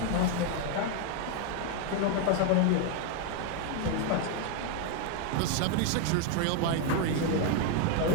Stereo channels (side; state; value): both; different; correlation 0.01